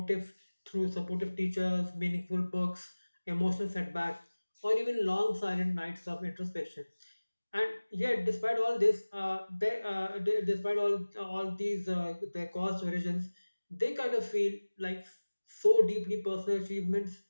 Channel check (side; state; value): both; inverted; correlation -1.00